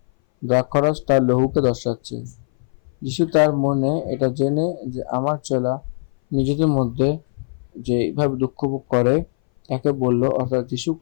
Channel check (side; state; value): right; silent; 61 dB below the other